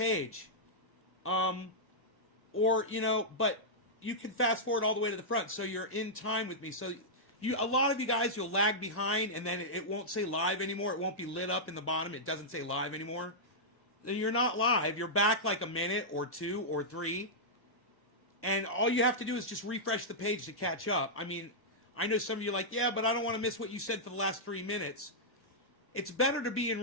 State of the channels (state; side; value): normal; both; correlation -0.10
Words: Or, you know, but you can fast forward all the way to the front so you're in time with me. So a lot of you guys, you'll lag behind and then it won't say live anymore. It won't be lit up in the bottom. It doesn't say live anymore. Then you're not live. You're back like a minute or 2 or 3. And all you have to do is just refresh the page to catch up. I mean, I know some of you are like, yeah, but I don't want to miss what you said for the last 3 minutes. It's better to be in